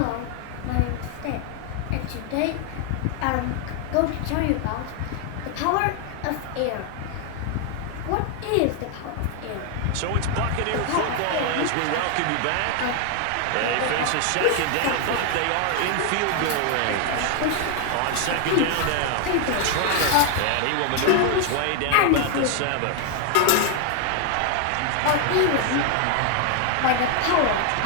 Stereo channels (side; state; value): both; different; correlation 0.00